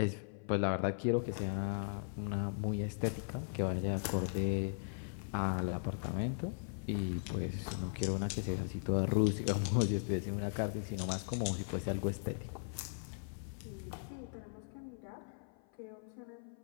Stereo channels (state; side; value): silent; right; 52 dB below the other